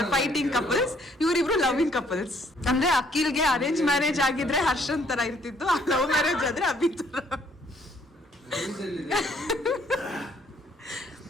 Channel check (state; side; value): normal; both; correlation 0.64